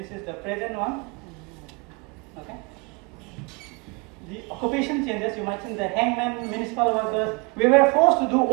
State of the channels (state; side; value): quieter; left; 29.6 dB